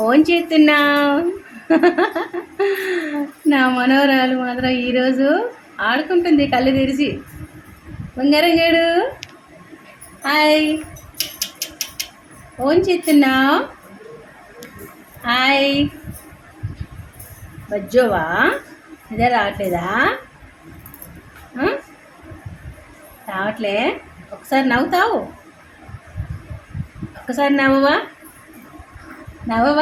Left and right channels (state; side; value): identical; both; correlation 1.00